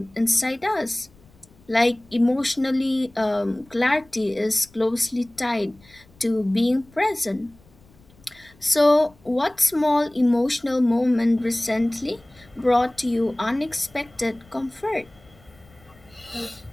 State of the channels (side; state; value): left; noise; rumble, 28 dB below the sound